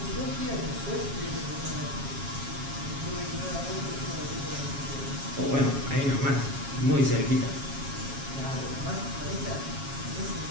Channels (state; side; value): late; left; 7.3 ms